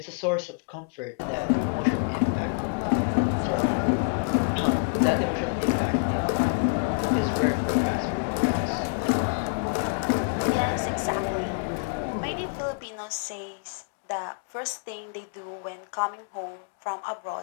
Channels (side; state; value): right; quieter; 38.7 dB